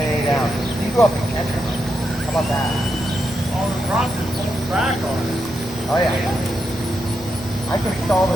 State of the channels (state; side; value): normal; both; correlation 0.84